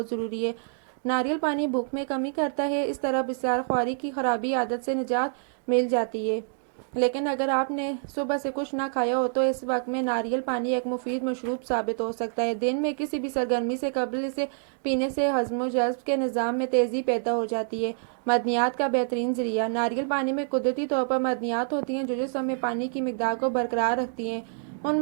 ضروری ہے۔ ناریل پانی بھوک میں کمی کرتا ہے۔ اس طرح بسیار خواری کی خرابی عادت سے نجات مل جاتی ہے۔ لیکن اگر آپ نے صبح سے کچھ نہ کھایا ہو تو اس وقت میں ناریل پانی ایک مفید مشروب ثابت ہو سکتا ہے۔ دن میں کسی بھی سرگرمی سے قبل اسے پینے سے ہضم و جذب کے نظام میں تیزی پیدا ہو جاتی ہے۔ معدنیات کا بہترین ذریعہ۔ ناریل پانی میں قدرتی طور پر معدنیات ہوتی ہیں جو جسم میں پانی کی مقدار کو برقرار رکھتی ہیں۔ ان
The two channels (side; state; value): left; silent; digital silence